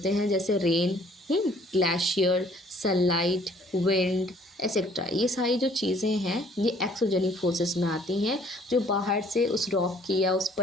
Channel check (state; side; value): normal; both; correlation 0.59